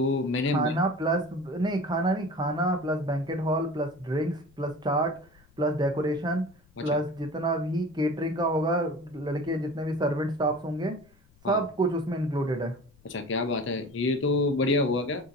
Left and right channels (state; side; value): noise; left; rumble, 30 dB below the sound